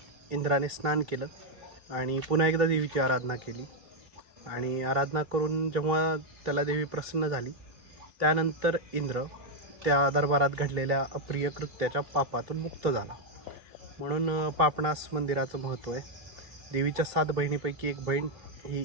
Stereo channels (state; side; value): late; left; 3.2 ms